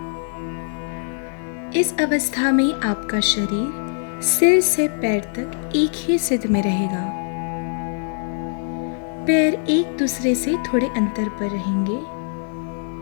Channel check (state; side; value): silent; right; 64 dB below the other